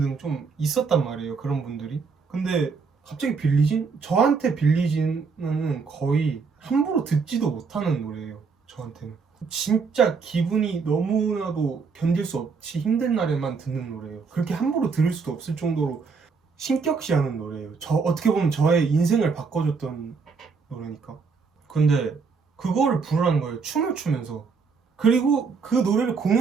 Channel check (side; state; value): left; quieter; 5.1 dB